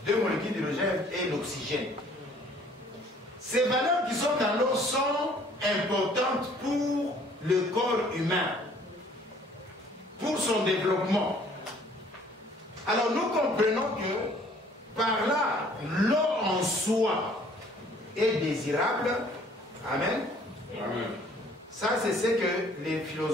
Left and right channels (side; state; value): both; normal; correlation 0.57